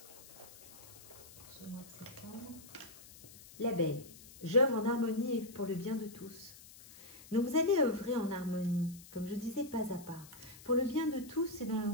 Ce mois de septembre. L'abeille. J'œuvre en harmonie et pour le bien de tous. Donc vous allez œuvrer en harmonie, comme je disais, pas à pas. Pour le bien de tous, c'est dans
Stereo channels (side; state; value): left; noise; hiss, 19 dB below the sound